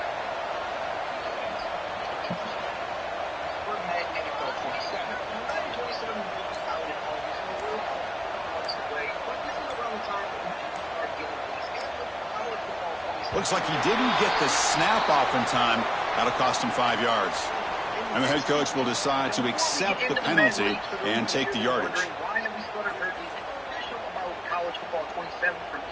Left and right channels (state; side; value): identical; both; correlation 1.00